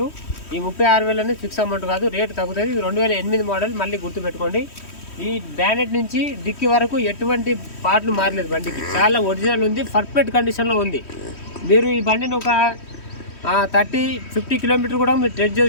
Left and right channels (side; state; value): right; late; 3.1 ms